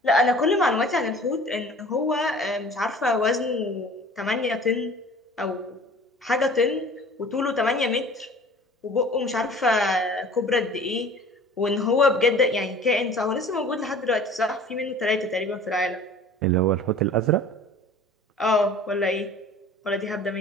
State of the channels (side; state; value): both; normal; correlation 0.46